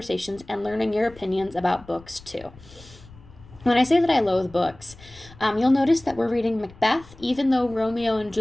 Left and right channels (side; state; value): left; noise; rumble, 22 dB below the sound